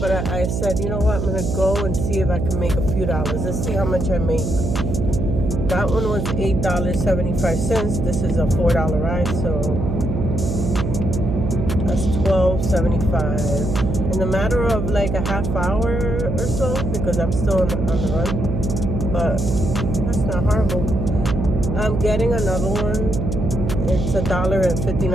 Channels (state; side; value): noise; right; hum, 2 dB below the sound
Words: I said, you know what, I'm going to go and see if I can make a few dollars. Let's see how much I make. That one was $8.75. This is a $4 ride, so that's $12.75. In a matter of like a half hour or so, because I'm still on the run, but that's not horrible. I'm getting another one. It's